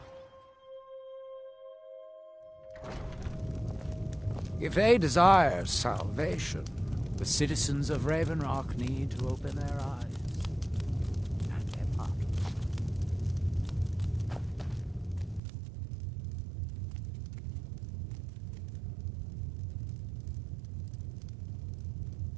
If they desire salvation, the citizens of Raven Rock need to open their eyes and their hearts.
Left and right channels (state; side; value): drops out; left; at 15.4 s